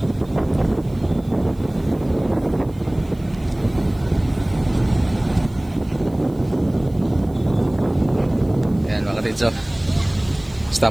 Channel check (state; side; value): noise; right; hiss, 28 dB below the sound